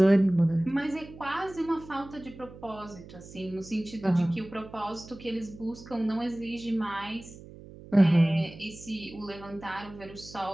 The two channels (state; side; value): noise; right; hum, 17 dB below the sound